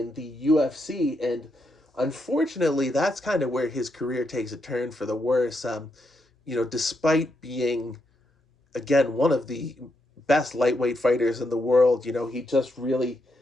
the UFC, and unfortunately, that's kind of where his career takes a turn for the worse. Despite being, again, one of the best lightweight fighters in the world, he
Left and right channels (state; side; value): normal; both; correlation 0.81